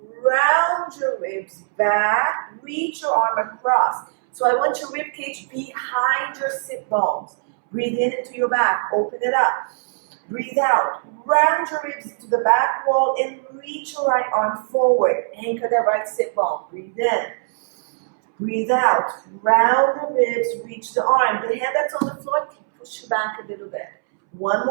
round your ribs back, reach your arm across. So I want your rib cage behind your sit bones. Breathe in into your back, open it up. Breathe out, round your ribs to the back wall and reach your right arm forward. Anchor that right sit bone. Breathe in. Breathe out, round the ribs, reach the arm. The hand that's on the floor, push you back a little bit. One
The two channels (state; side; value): silent; left; 65 dB below the other